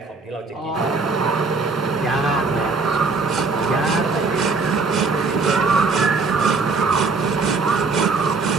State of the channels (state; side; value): quieter; left; 4.1 dB